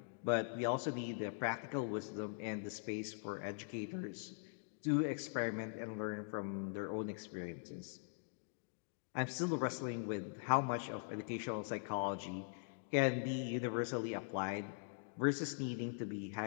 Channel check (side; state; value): right; silent; digital silence